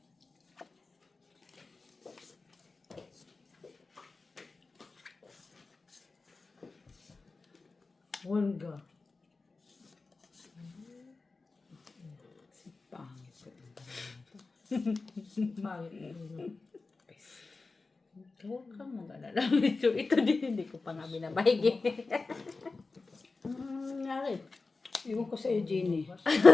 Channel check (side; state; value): right; quieter; 3.8 dB